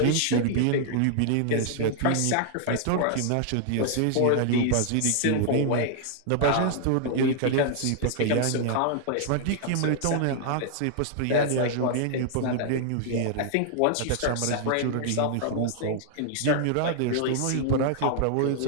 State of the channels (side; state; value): both; different; correlation -0.01